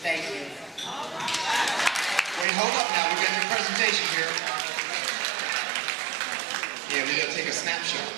Thank you. Wait, hold up now. We got your presentation here. Yeah, we got to take a snapshot.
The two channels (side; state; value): left; drops out; at 2.5 s